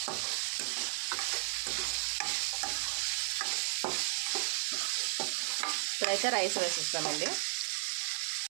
ఇప్పుడైతే రైస్ వేసేస్తామండి.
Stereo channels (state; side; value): silent; left; digital silence